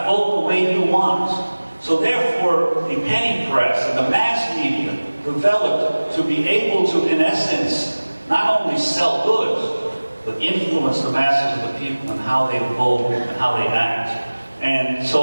vote the way you want. So therefore, the penny press and the mass media developed to be able to, in essence, not only sell goods, but influence the masses of the people and how they vote and how they act. And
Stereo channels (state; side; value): inverted; both; correlation -1.00